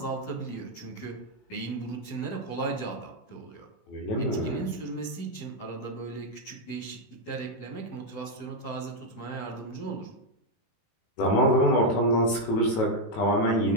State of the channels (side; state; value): right; late; 18 ms